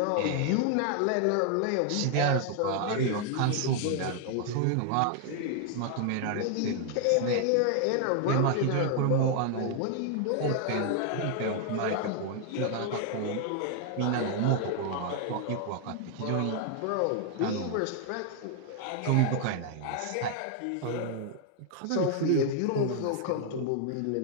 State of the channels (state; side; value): different; both; correlation 0.00